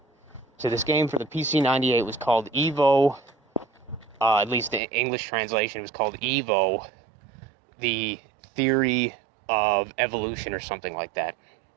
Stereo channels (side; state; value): left; drops out; at 4.8 s